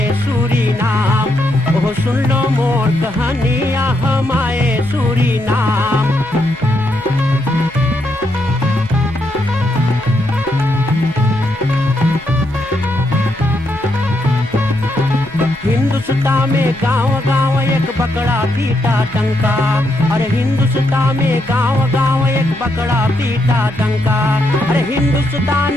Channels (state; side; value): normal; both; correlation 0.79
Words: सूरीनाम, ओह सुन लो मोर कहानियाँ हमारे सूरीनाम। हिंदुस्तान में गांव गांव एक बकरा पीटा डंका, अरे हिंदुस्तान में गांव गांव एक बकरा पीटा डंका। अरे